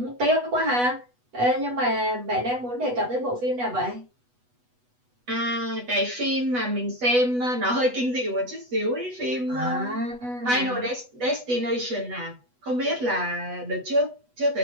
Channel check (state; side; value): late; left; 8.1 ms